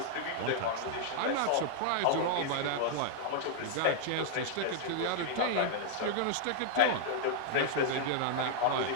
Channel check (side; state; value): both; different; correlation -0.01